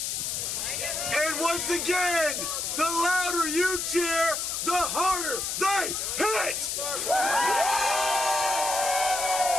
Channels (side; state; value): left; noise; hiss, 2 dB below the sound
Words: And once again, the louder you cheer, the harder they hit.